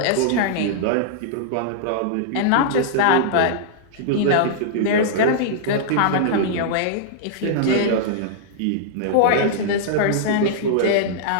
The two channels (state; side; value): different; both; correlation -0.02